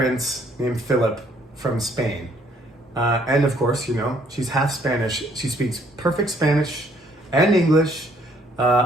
named Philip from Spain. And of course, she's half Spanish. She speaks perfect Spanish and English.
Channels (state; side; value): normal; both; correlation 0.64